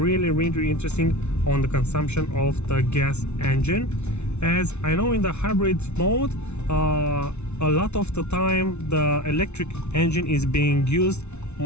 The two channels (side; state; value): right; late; 0.81 ms